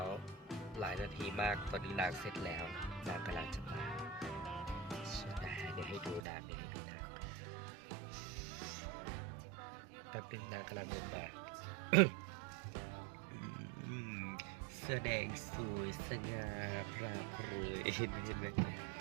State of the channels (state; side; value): drops out; left; at 6.2 s